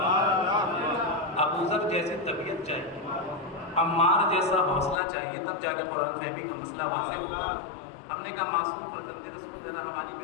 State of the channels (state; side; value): drops out; right; at 5.0 s